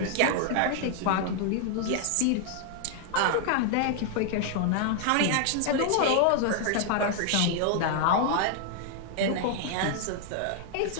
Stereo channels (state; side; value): different; both; correlation 0.00